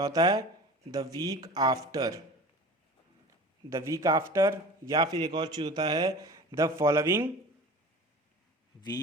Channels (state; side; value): normal; both; correlation 0.38